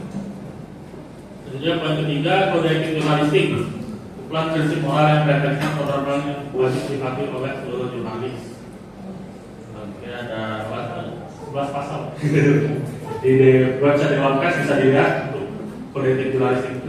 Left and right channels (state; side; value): identical; both; correlation 1.00